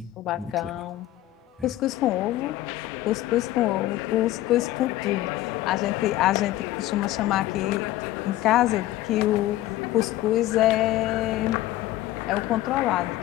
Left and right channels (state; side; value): quieter; right; 15.4 dB